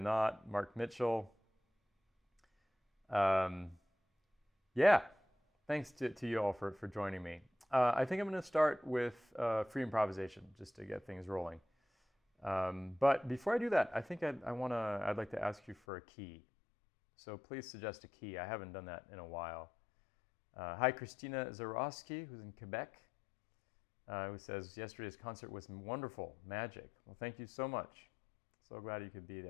Mark Mitchell. Yeah, thanks to you all for joining me. I think I'm going to start with free improvisation just to get things rolling. But before I do that, I think I'd like to ask you for a key. So please suggest a key. I haven't done that in a while. Hi, Christina Zarowski, who's in Quebec. Who says, yesterday's concert was wonderful, magic. Well, thank you so much. So glad you could be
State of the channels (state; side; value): drops out; right; at 15.8 s